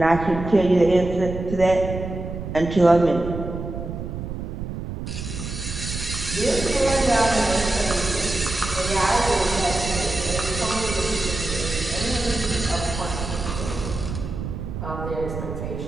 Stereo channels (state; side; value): noise; right; rumble, 7 dB below the sound